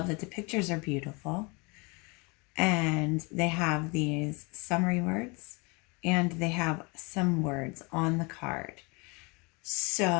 that the pictures are beautiful, and they have these summary words, and they have some words on the card.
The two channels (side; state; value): right; quieter; 29.2 dB